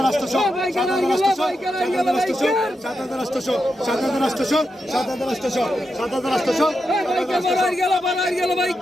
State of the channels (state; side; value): normal; both; correlation 0.86